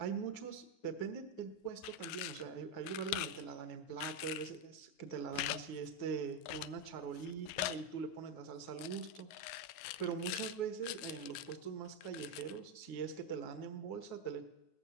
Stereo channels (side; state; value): right; late; 9.4 ms